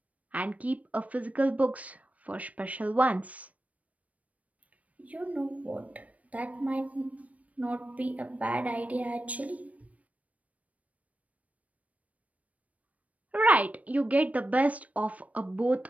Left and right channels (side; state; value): left; late; 0.068 ms